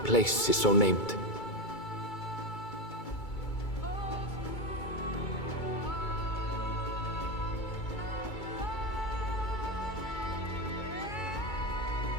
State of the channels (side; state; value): right; late; 2.3 ms